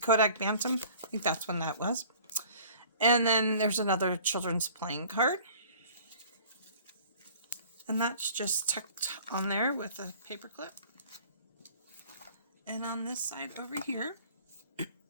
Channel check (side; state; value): both; inverted; correlation -0.49